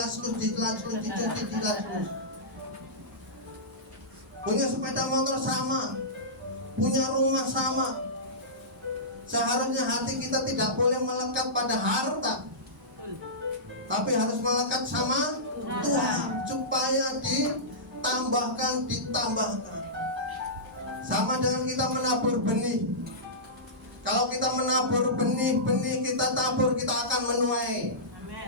punya sepeda motor sama, punya rumah sama. Seharusnya hati kita tidak boleh melekat pada harta, tapi harus melekat sama Tuhan, supaya ditambahkan. Sama dengan kita menabur benih. Kalau kita menabur benih kita tabur, kita akan menuai.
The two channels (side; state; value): both; normal; correlation -0.18